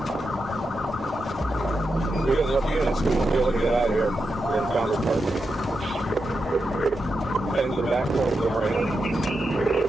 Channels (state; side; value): normal; both; correlation 0.87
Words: We got enough units to be able to get out of here. We're in Founders Park. Heading to the back door of the marina.